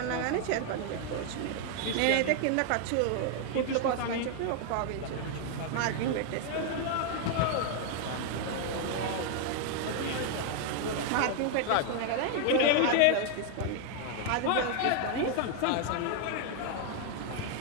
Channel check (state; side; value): different; both; correlation 0.00